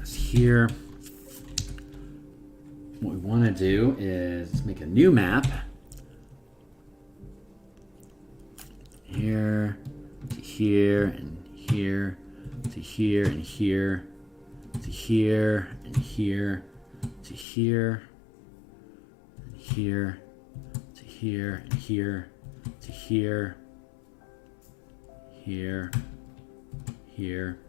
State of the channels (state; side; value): drops out; right; at 17.4 s